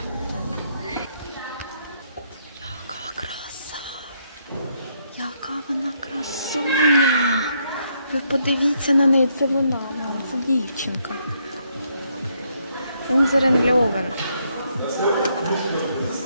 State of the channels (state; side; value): inverted; both; correlation -0.74